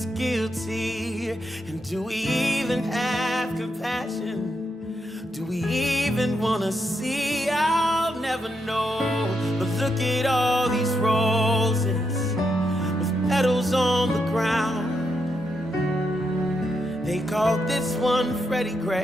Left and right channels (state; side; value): normal; both; correlation 0.81